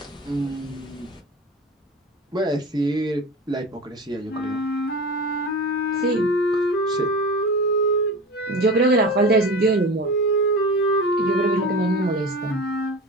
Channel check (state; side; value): normal; both; correlation 0.32